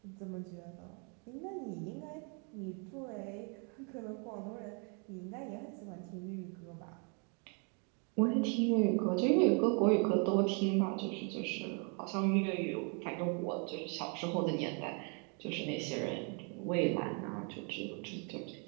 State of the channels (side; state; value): left; quieter; 37.3 dB